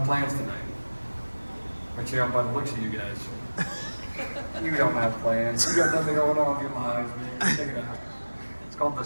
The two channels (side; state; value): both; inverted; correlation -1.00